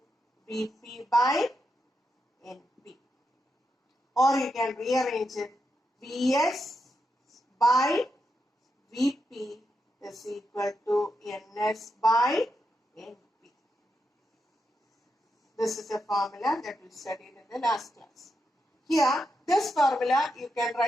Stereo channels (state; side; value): normal; both; correlation 0.85